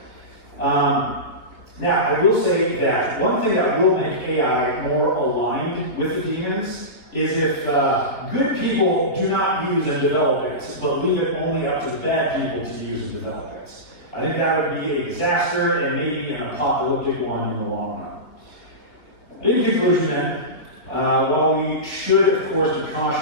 Now, I will say that one thing that will make AI more aligned with the demons is if good people do not use and develop it, but leave it only up to the bad people to use and develop it. I think that would be a disaster and maybe an apocalyptic one in the long run. In conclusion then, while we should, of course, be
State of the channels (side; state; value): right; late; 3.7 ms